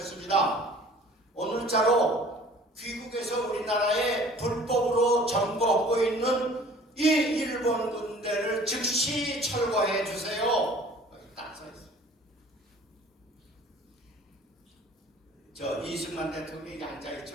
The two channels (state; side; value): normal; both; correlation 0.49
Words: 오늘자로 귀국에서 우리나라에 불법으로 점거하고 있는 이 일본 군대를 즉시 철거해 주세요. 여기 딱 써있어요. 저 이승만 대통령이